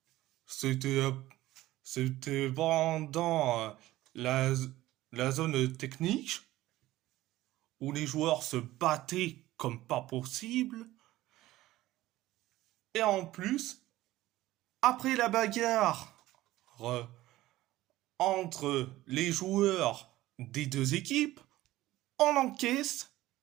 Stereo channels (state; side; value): quieter; left; 16.3 dB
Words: c'était c'était pendant la, la zone technique où les joueurs se battaient comme pas possible. Et en plus, après la bagarre entre les joueurs des deux équipes, on encaisse